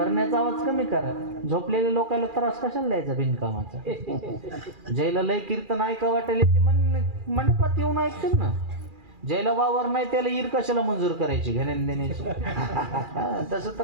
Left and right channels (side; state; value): left; late; 2.4 ms